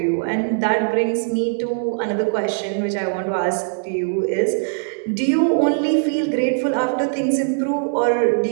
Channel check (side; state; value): left; silent; digital silence